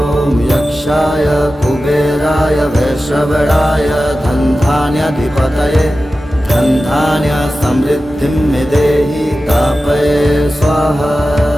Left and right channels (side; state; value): both; normal; correlation 0.94